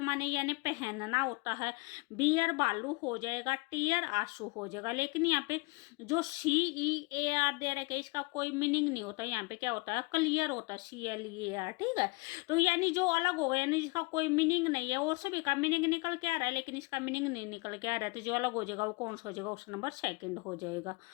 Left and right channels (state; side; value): quieter; right; 27.2 dB